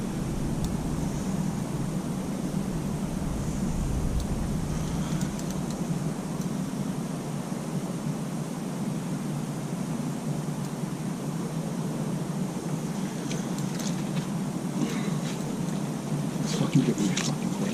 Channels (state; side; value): identical; both; correlation 1.00